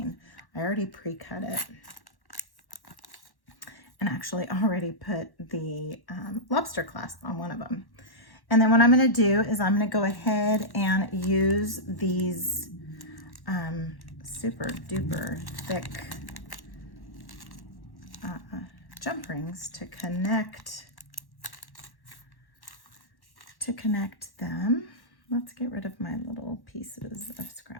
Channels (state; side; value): late; right; 1.1 ms